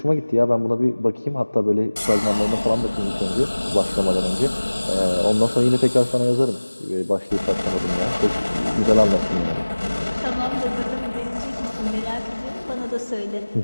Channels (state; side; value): inverted; both; correlation -1.00